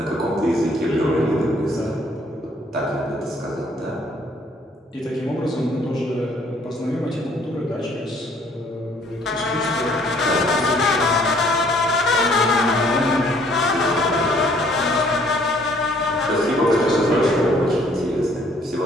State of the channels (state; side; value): normal; both; correlation 0.61